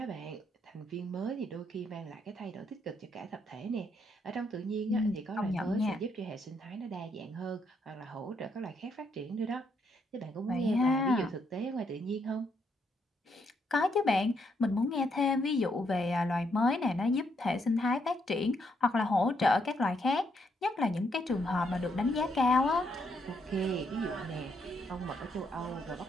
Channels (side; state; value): both; normal; correlation 0.75